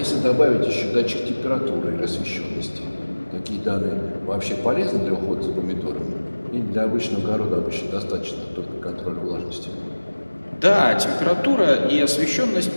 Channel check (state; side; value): inverted; both; correlation -1.00